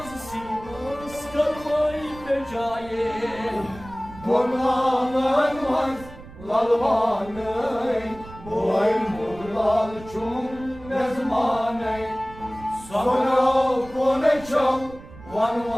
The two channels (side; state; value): right; noise; rumble, 17 dB below the sound